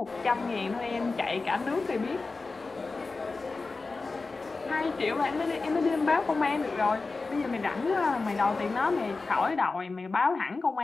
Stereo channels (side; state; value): right; quieter; 3.8 dB